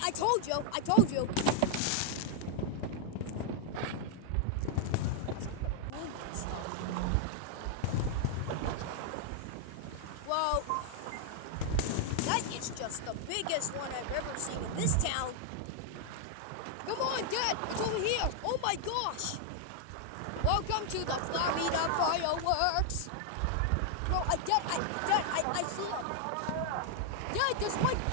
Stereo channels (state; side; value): different; both; correlation 0.00